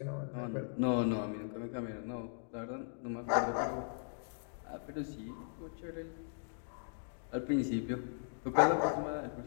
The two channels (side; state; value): right; silent; digital silence